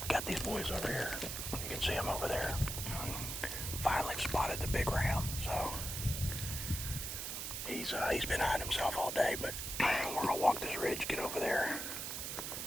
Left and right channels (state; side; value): noise; right; hiss, 4 dB below the sound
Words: Got these boys over here. You can see them over there. Finally spotted the big ram, so he's been hiding himself all day, but we're gonna walk this ridge, get over there,